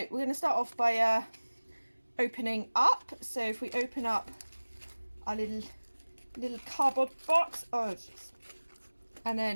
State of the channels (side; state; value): both; inverted; correlation -1.00